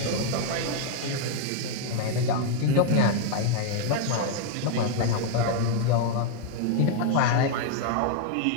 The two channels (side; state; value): both; different; correlation 0.00